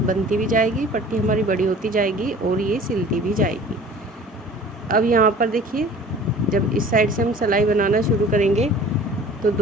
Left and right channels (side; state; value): both; normal; correlation 0.46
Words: बनती भी जाएगी, पट्टी हमारी बड़ी होती जाएगी और ये सिलती भी जाएगी। अब यहाँ पर देखिए जब इस साइड से हम सिलाई बनाना शुरू करेंगे तो